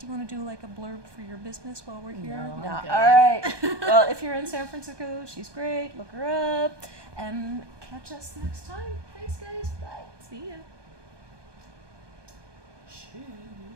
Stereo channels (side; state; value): left; late; 1.2 ms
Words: you want to do like a blurb for your business while we're here? No, I'm No. good. All right. Well, if you're in San Francisco, she's great. Look her up. And catch us next time. Thanks, guys. Bye. See ya. Cheers.